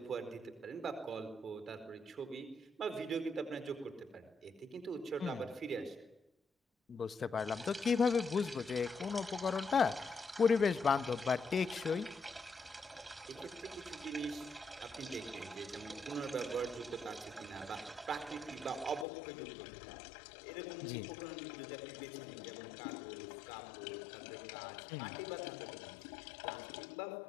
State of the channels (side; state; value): right; drops out; at 19.1 s